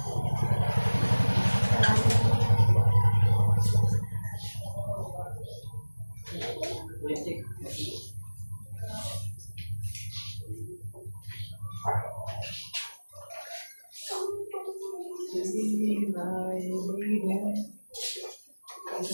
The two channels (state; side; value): inverted; both; correlation -1.00